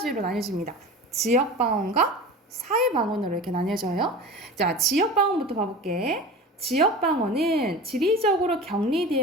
나뉘어집니다. 지역 방언과 사회 방언으로 이렇게 나뉘어져요. 자, 지역 방언부터 봐볼게. 지역 방언은 지리적으로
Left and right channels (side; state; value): both; normal; correlation 0.34